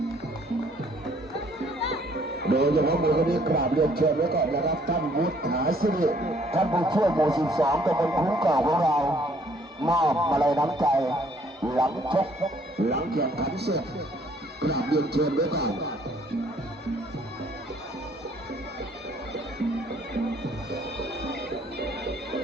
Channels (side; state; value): both; normal; correlation 0.62